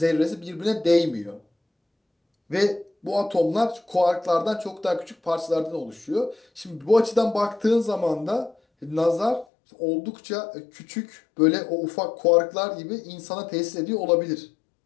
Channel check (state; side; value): drops out; right; at 9.5 s